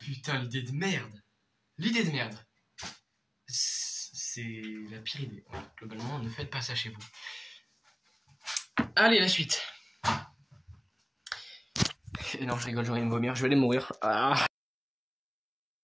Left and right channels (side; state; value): both; identical; correlation 1.00